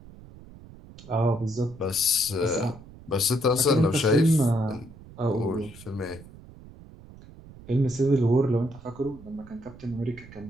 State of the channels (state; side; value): noise; right; rumble, 19 dB below the sound